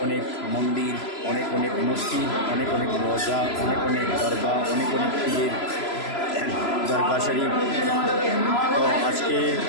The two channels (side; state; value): right; late; 3.0 ms